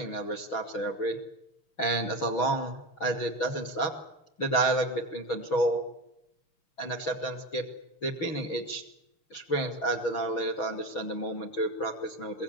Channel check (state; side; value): late; right; 6.2 ms